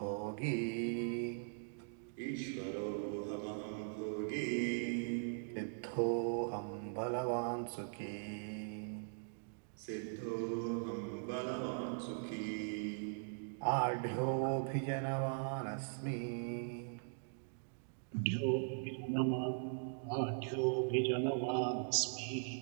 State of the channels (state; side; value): silent; left; digital silence